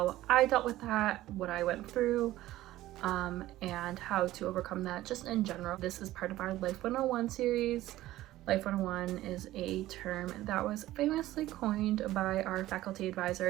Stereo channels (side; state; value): left; quieter; 15.5 dB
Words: I dealt with that, what I went through, and how to overcome that just in general. This is part of our Life 101 series. Life 101 is a term that was famously coined by our faculty